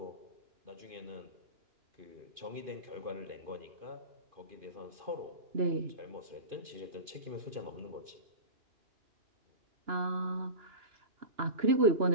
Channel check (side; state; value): left; late; 2.5 ms